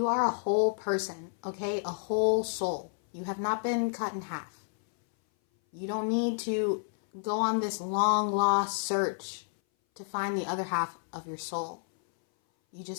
are a whole person, okay? A whole soul. You have not been cut in half. You don't need to go on this long lost search to find the other half of your soul. You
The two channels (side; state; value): right; silent; 58 dB below the other